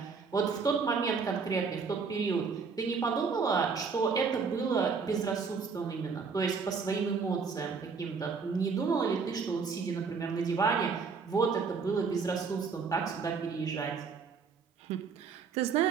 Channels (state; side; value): quieter; left; 5.3 dB